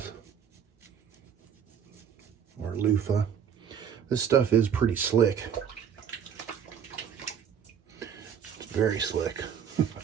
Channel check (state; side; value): quieter; left; 8.0 dB